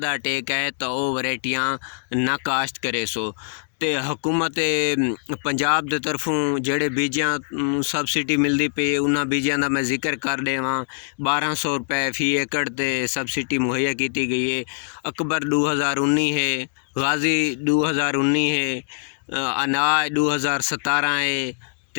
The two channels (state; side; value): silent; right; digital silence